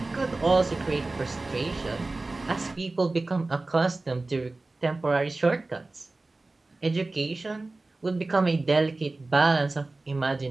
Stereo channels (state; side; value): quieter; left; 3.2 dB